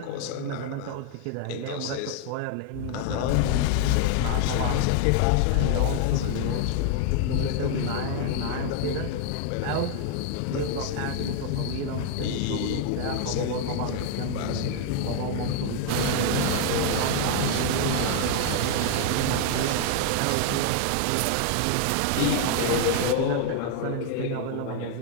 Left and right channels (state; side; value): different; both; correlation 0.00